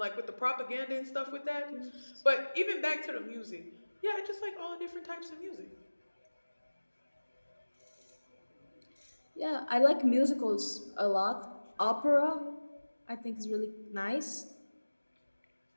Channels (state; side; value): inverted; both; correlation -1.00